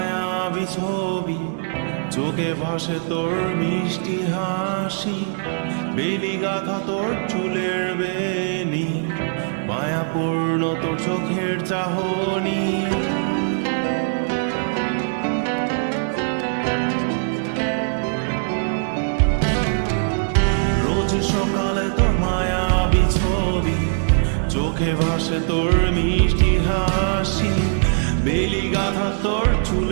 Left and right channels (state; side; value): silent; left; digital silence